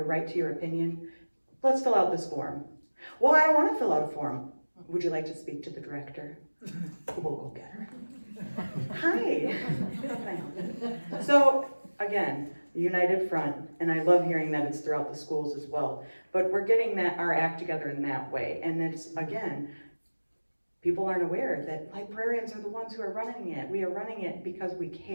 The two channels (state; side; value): inverted; both; correlation -1.00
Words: right to your opinion. Let's fill out this form. Well, I don't wanna fill out a form. Would you like to speak to the director? We'll go get her. Hi. How can I help you? So, again, united front, and I love hearing that it's throughout the schools as well. But we're getting our act together in that way. And it's, again, people aren't aware that librarians are the ones who are running it. We are running it because we